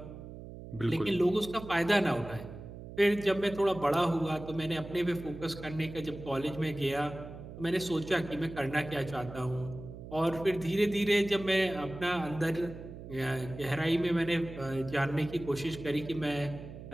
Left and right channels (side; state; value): right; noise; hum, 13 dB below the sound